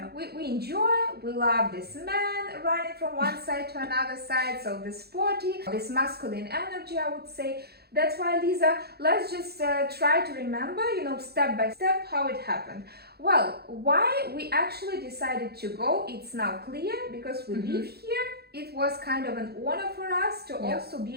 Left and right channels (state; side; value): late; left; 0.46 ms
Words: We enjoy, we love this man running from one side to another side. So this sporty, this masculine energy, I would say. That's why, Lisa, let's just try to remember, step by step how it happened. Well, why we actually decided to go, it's now clear, because we live here. It was kind of an honor for us to also be